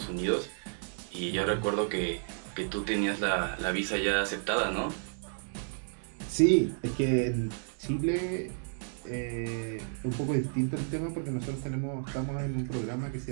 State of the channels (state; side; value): silent; left; digital silence